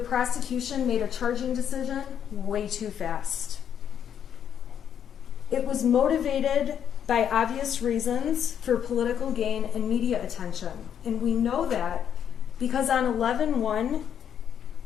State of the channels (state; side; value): quieter; right; 8.8 dB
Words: prosecution made a charging decision way too fast. It was motivated by obvious reasons for political gain and media attention. And we know that because on 11/1,